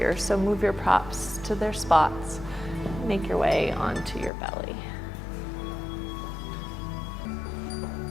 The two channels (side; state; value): right; drops out; at 4.3 s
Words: So move your props to their spots. Make your way onto your belly.